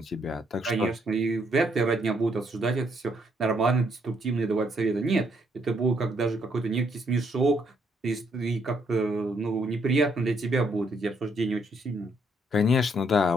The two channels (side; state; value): both; normal; correlation 0.72